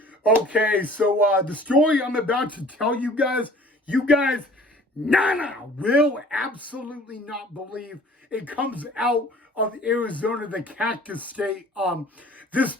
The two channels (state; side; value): normal; both; correlation 0.49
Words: Okay, so the story I'm about to tell you guys will absolutely not believe. It comes out of Arizona, the Cactus State, this